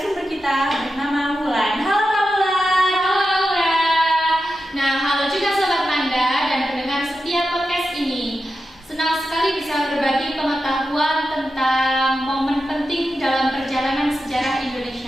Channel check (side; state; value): both; normal; correlation 0.90